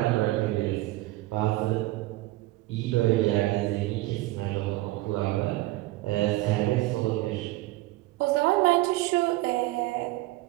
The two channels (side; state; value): left; quieter; 18.6 dB